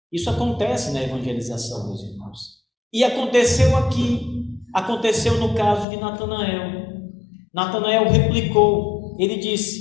Isso acontece na evangelização, meus irmãos. E aconteceu aqui, aconteceu no caso de Natanael. Natanael replicou, ele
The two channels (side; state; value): right; drops out; at 5.9 s